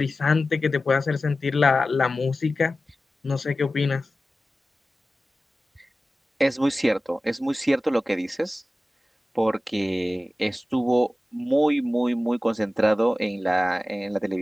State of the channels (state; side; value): normal; both; correlation 0.95